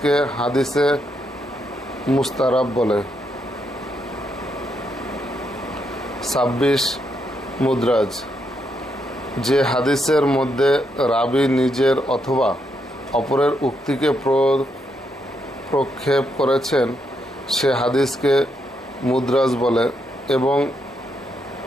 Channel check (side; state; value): both; normal; correlation 0.79